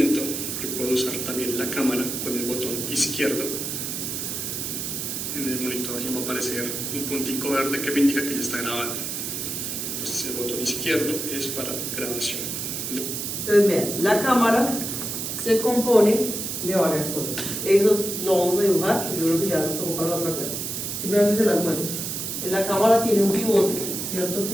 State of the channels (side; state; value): right; noise; hiss, 4 dB below the sound